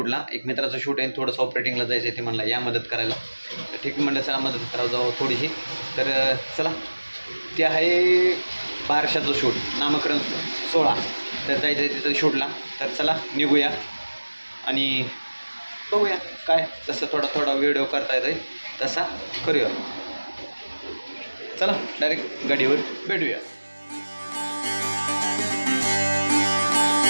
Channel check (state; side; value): inverted; both; correlation -1.00